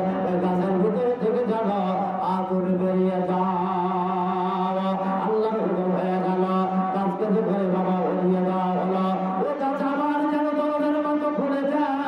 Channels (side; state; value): both; identical; correlation 1.00